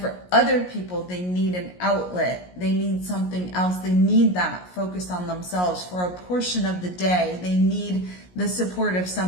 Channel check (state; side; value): late; right; 17 ms